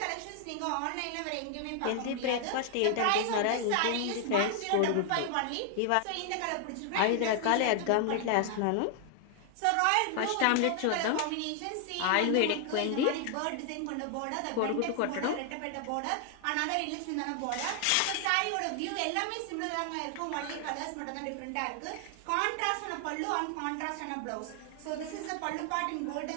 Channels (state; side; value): different; both; correlation 0.00